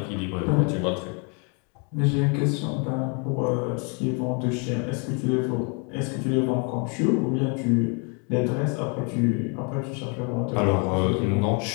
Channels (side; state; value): right; quieter; 36.1 dB